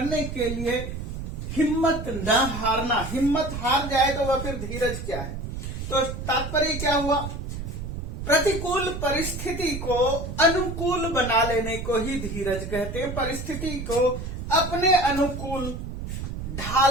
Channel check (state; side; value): noise; right; rumble, 6 dB below the sound